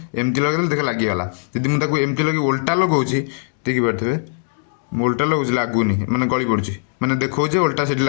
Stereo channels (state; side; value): silent; right; digital silence